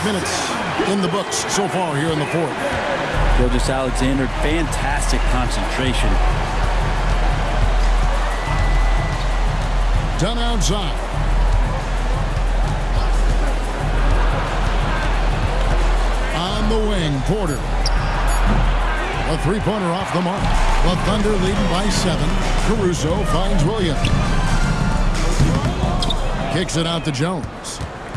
minutes in the books so far here in the fourth. Gilgeous-Alexander, fantastic concentration. Dunn outside. On the wing, Porter. A three-pointer off the mark. The Thunder leading by 7. Caruso finds Williams. Kicks it out to Jones.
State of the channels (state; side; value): identical; both; correlation 1.00